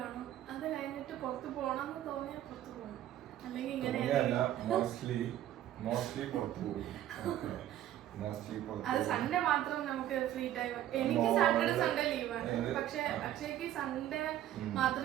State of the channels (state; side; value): quieter; left; 12.4 dB